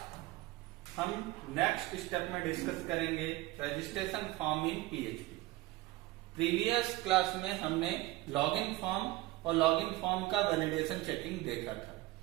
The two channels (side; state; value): left; quieter; 18.7 dB